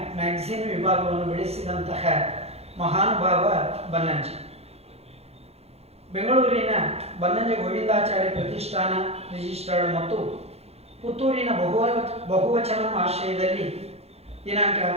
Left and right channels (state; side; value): late; left; 0.30 ms